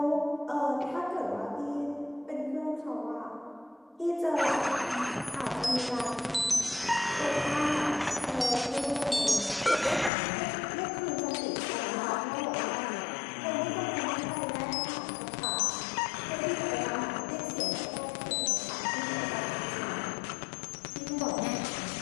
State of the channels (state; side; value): drops out; right; at 10.1 s